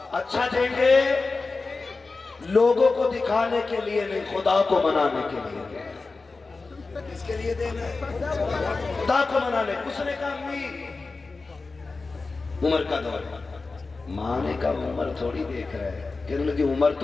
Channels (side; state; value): right; quieter; 3.9 dB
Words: اچھا دیں گے، لوگوں کو دکھانے کے لیے نہیں، خدا کو منانے کے لیے۔ کس کے لیے دینا ہے؟ خدا کو منانے۔ اس نے کہا امی عمر کا دور، ماں نے کہا عمر تھوڑی دیکھ رہا ہے، کہنے لگی عمر